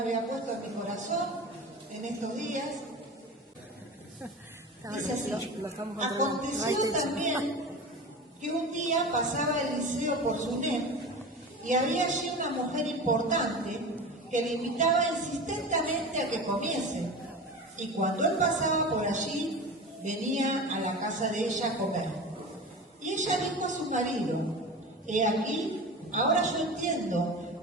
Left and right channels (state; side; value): normal; both; correlation 0.31